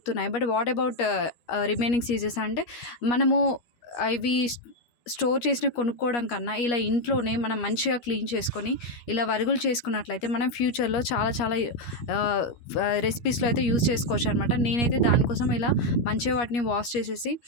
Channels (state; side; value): late; right; 13 ms